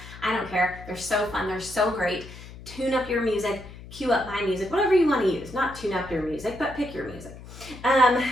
I don't care. They're so fun. They're so great. Tune up your music, cue up my music, whatever you want to use. Not tune up your music, but pick your music.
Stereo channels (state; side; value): noise; left; hum, 16 dB below the sound